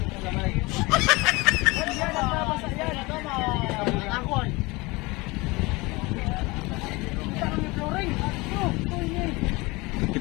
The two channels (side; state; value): right; quieter; 23.7 dB